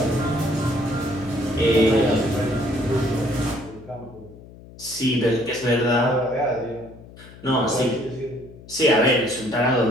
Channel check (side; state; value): left; noise; hum, 19 dB below the sound